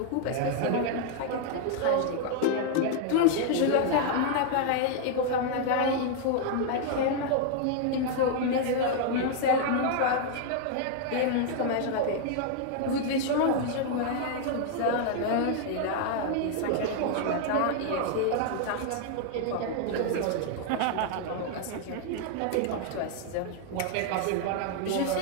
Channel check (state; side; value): different; both; correlation 0.00